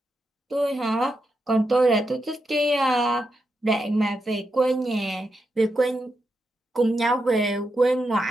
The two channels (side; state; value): both; normal; correlation 0.85